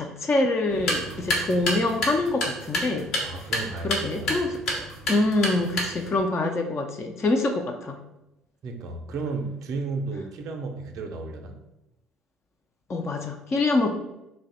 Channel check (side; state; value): both; normal; correlation 0.66